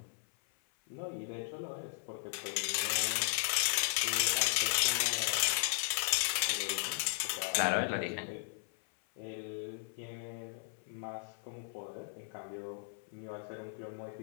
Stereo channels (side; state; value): right; silent; 54 dB below the other